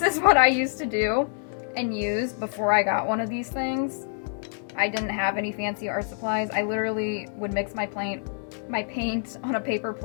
is what I used to do and use before I got one of these things. I didn't have any fancy art supplies. I literally would mix my paint on a paper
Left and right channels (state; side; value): silent; right; 61 dB below the other